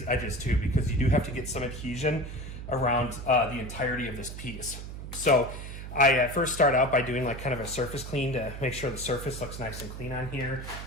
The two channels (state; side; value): noise; right; hum, 9 dB below the sound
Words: edges too, because you do have to get some adhesion around the entirety of this piece. So I first start out by doing like kind of a surface clean to make sure the surface looks nice and clean on here.